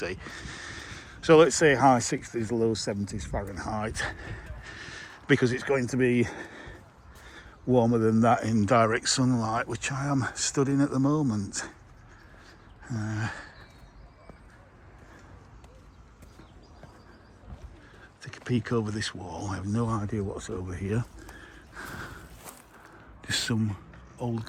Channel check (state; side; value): identical; both; correlation 1.00